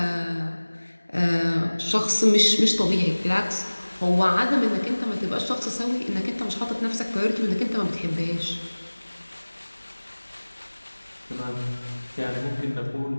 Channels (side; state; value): both; inverted; correlation -1.00